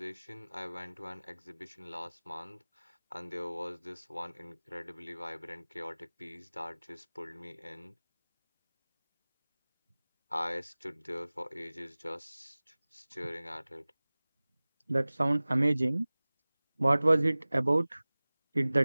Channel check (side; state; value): both; inverted; correlation -0.99